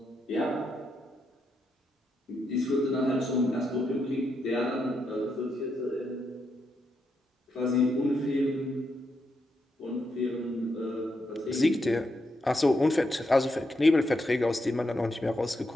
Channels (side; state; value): both; normal; correlation 0.82